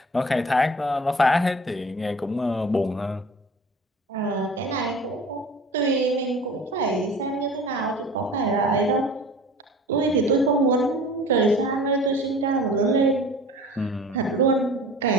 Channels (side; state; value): both; normal; correlation 0.42